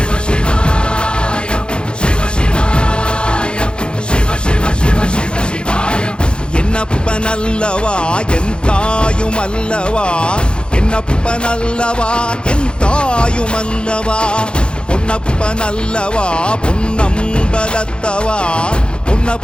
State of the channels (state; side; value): late; right; 0.053 ms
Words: என்னப்பனல்லவா என் தாயுமல்லவா, என்னப்பனல்லவா என் தாயுமல்லவா, பொன்னப்பனல்லவா பொன்னம்பலத்தவா,